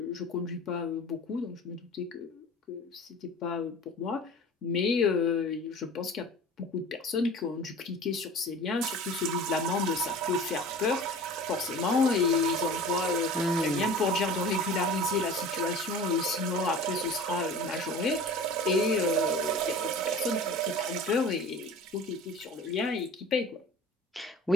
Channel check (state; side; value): normal; both; correlation 0.40